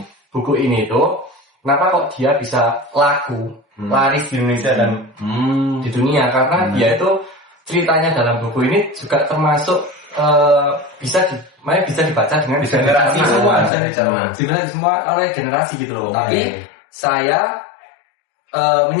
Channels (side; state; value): right; drops out; at 13.7 s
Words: buku ini tuh kenapa kok dia bisa laku, laris di Indonesia dan di dunia? Karena dia itu ceritanya dalam buku ini juga termasuk bisa dibaca dengan generasi semua oleh generasi gitu loh. Tapi saya